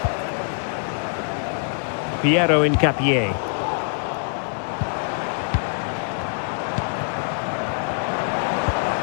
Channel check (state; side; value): silent; right; 63 dB below the other